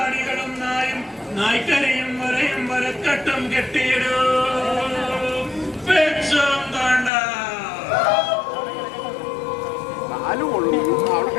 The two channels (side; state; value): right; drops out; at 7.1 s